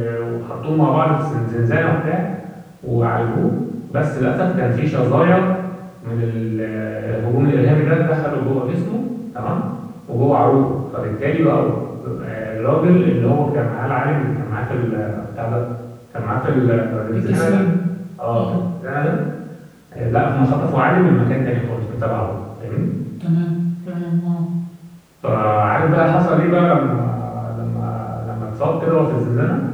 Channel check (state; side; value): identical; both; correlation 1.00